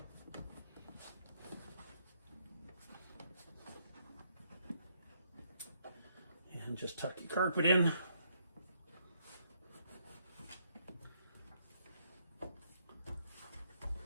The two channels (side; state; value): both; inverted; correlation -0.73